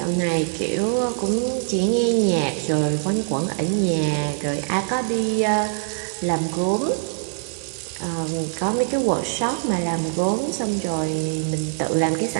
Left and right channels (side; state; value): left; silent; 63 dB below the other